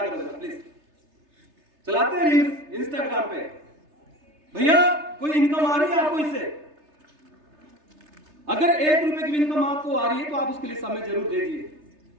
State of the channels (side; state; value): left; late; 3.3 ms